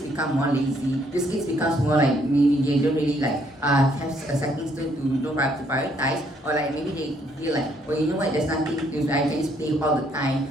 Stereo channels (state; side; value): normal; both; correlation 0.69